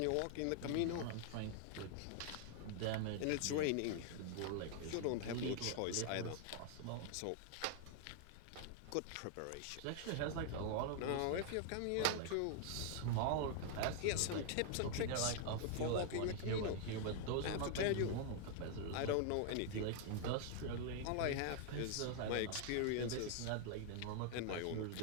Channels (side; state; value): both; different; correlation 0.00